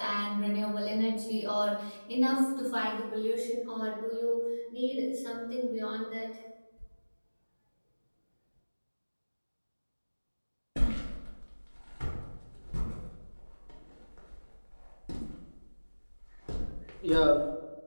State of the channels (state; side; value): inverted; both; correlation -1.00